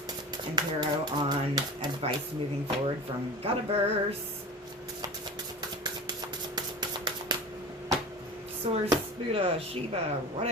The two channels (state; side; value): normal; both; correlation 0.32